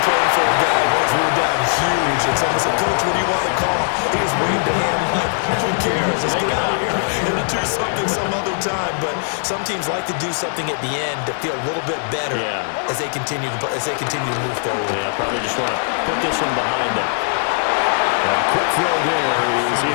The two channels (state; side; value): silent; right; digital silence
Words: playing for a guy once we were down huge, and someone said, Coach, what do you want to call? He just waved a hand like, who cares? Let's get out of here and do something some other time. But some teams like to do something at the end to feel a little bit better as they continue to move forward. Yeah, probably just want to put this one behind them. Quick throw there is